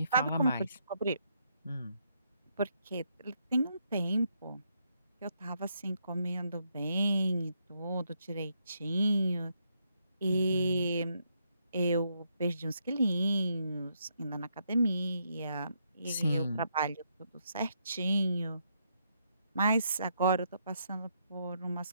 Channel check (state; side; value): inverted; both; correlation -0.77